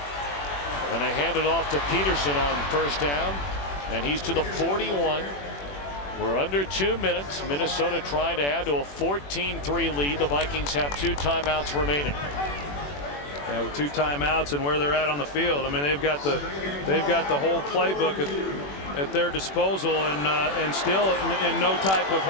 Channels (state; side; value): late; right; 21 ms